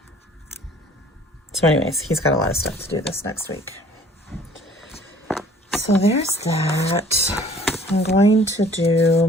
So anyways, he's got a lot of stuff to do this next week. So there's that. I'm going to do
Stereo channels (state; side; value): normal; both; correlation 0.53